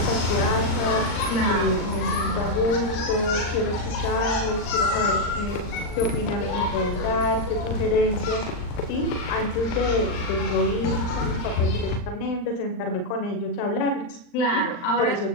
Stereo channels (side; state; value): right; late; 39 ms